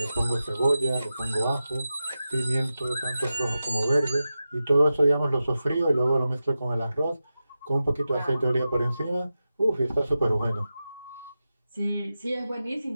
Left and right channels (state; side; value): inverted; both; correlation -0.92